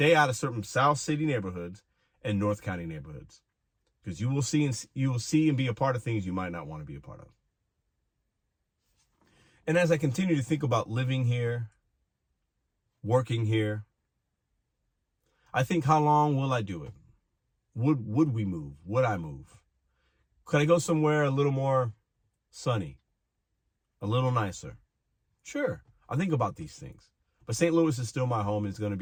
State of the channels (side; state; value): both; identical; correlation 1.00